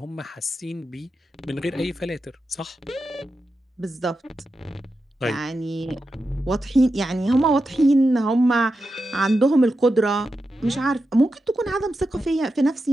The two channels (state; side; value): normal; both; correlation 0.89